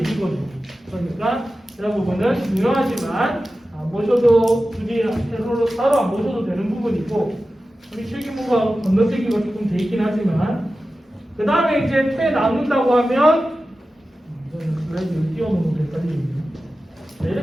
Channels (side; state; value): both; normal; correlation 0.94